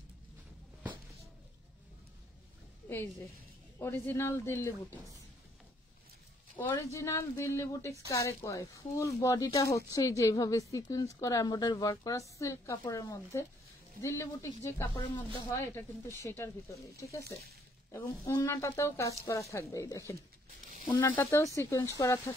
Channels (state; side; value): normal; both; correlation 0.66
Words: এই যে original Delhi boutiques, original Delhi boutiques কারে কয়? ফুল বডিটা হচ্ছে যেভাবে সিকোয়েন্স করা এমব্রয়ডারি ওয়ার্ক করা সিল্ক কাপড়ের মধ্যে, দিল্লি বুটিক্স যে কাপড়ের মধ্যে হয় এটা কিন্তু সেটার ভিতরে, ঠিক আছে। এবং ওড়নাটাতেও কাজ করা থাকবে। এই দেখেন, ওন্নাটাতেও সিকোয়েন্স করা